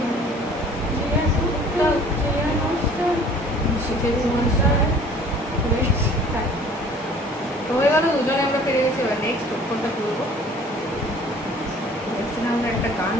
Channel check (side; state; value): both; normal; correlation 0.51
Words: হয়ে গেল, দুজনে আমরা পেরে গেছি। এবার নেক্সট কোনটা করবো, আমরা একটা গান